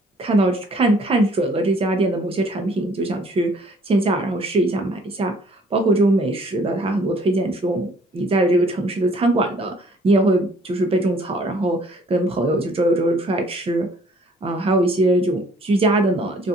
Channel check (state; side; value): normal; both; correlation 0.58